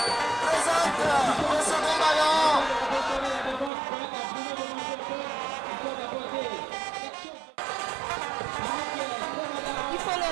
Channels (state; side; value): drops out; left; at 3.7 s